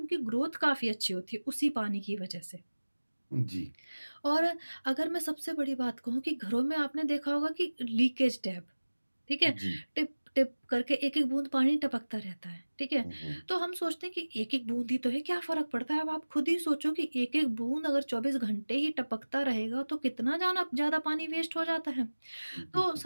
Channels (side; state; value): both; inverted; correlation -1.00